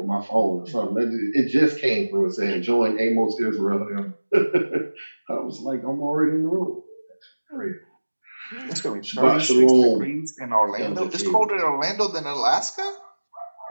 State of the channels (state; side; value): inverted; both; correlation -1.00